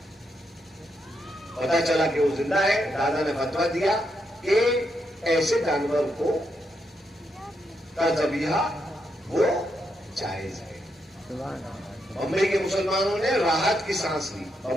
پتا چلا کہ وہ زندہ ہے. دادا نے فتویٰ دیا کہ ایسے جانور کو کا ذبیحہ وہ جائز ہے. بمبئی کے مسلمانوں نے راحت کی سانس لی.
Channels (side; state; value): both; normal; correlation 0.81